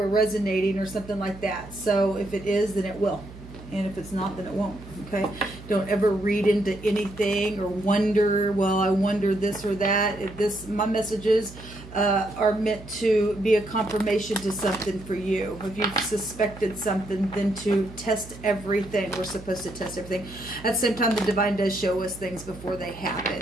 resonating or something like that. So if it is, then it will. And if it's not, then it won't. Okay? Don't ever read into anything or wonder, well, I wonder this or that. My messages are meant to be a confirmation to something for you. If you've suspected something, then to test everything. We're supposed to test everything. At the same time, the divine does show us things before they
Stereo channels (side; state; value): right; noise; hum, 16 dB below the sound